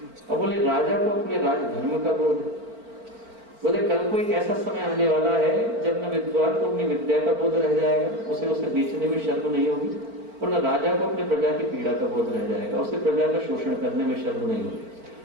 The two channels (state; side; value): late; left; 4.4 ms